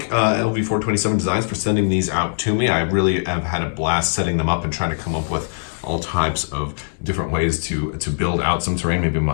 Lv427-designs for sending these out to me. I really have had a blast setting them up and trying to come up with all types of different ways to build out some terrain. Maybe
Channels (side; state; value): right; silent; digital silence